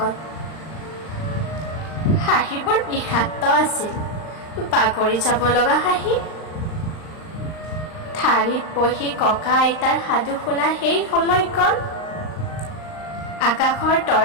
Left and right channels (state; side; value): late; right; 39 ms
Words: হাঁহিবোৰ বিষাক্ত আছিল, বাগৰি যাব লগা হাঁহি। ঠাৰিত বহি ককা আইতাৰ সাধু শুনা সেই সময়কণ, আকাশৰ